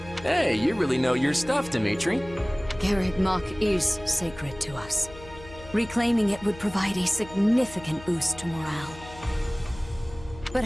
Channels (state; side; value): noise; left; hum, 17 dB below the sound